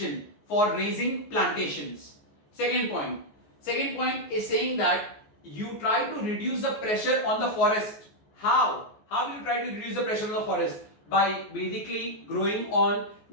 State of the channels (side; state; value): right; late; 14 ms